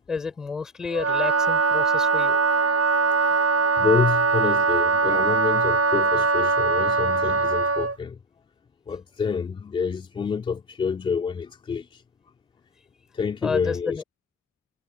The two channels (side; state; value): both; normal; correlation 0.07